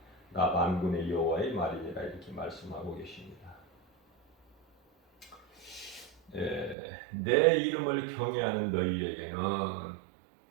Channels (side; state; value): left; drops out; at 6.8 s